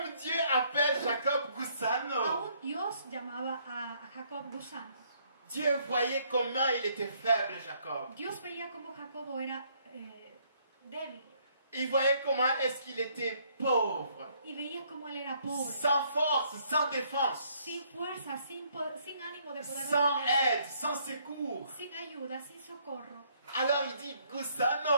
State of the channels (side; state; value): both; inverted; correlation -0.67